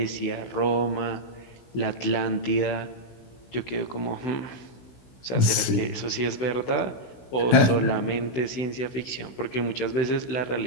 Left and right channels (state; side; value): late; right; 16 ms